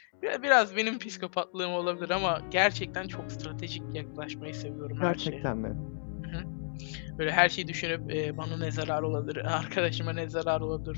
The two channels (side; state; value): right; silent; digital silence